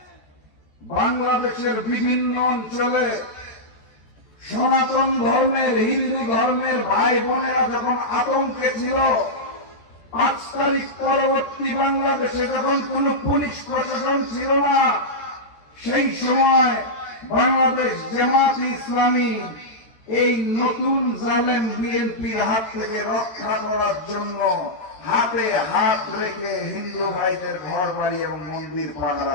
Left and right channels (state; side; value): late; right; 13 ms